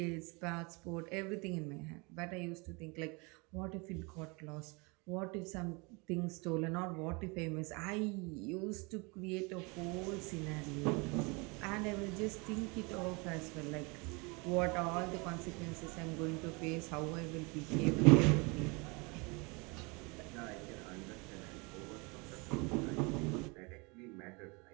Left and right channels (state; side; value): quieter; left; 28.8 dB